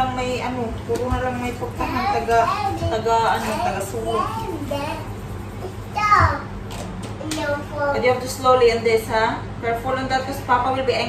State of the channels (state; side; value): identical; both; correlation 1.00